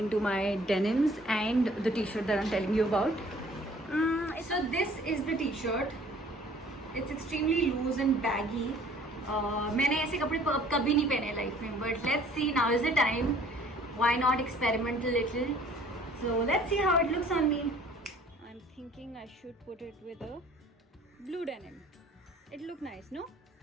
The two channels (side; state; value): both; normal; correlation 0.54